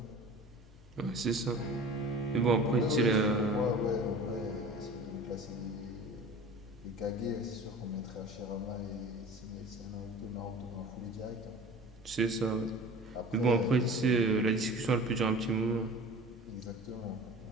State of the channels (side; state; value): both; normal; correlation 0.40